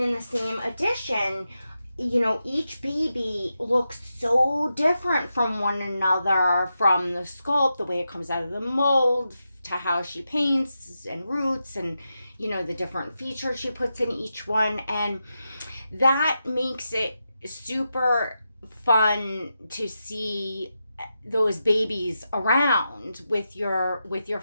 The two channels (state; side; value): inverted; both; correlation -0.88